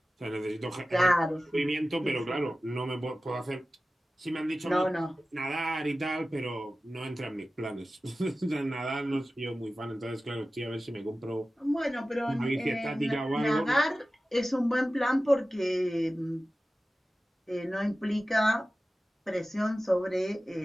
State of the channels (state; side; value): normal; both; correlation 0.95